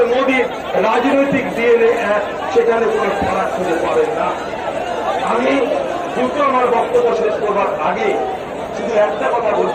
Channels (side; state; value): both; identical; correlation 1.00